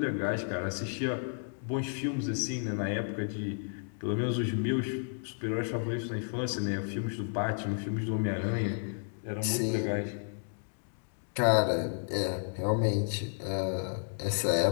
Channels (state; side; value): silent; right; digital silence